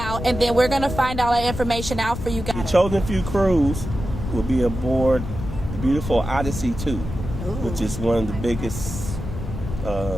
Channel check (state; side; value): noise; left; rumble, 7 dB below the sound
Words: and then we're going to find all that information out for you guys. The Chosen Few cruise will be aboard the beautiful Odyssey 2, which is one of the biggest